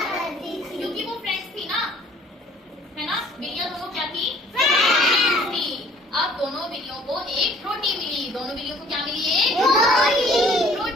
करती थी। क्योंकि वो फ्रेंड्स थी ना, है ना? बिल्लियां दोनों क्या थी? फ्रेंड्स थी। अब दोनों बिल्लियों को एक रोटी मिली। दोनों बिल्लियों को क्या मिली? एक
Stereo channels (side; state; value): both; normal; correlation 0.56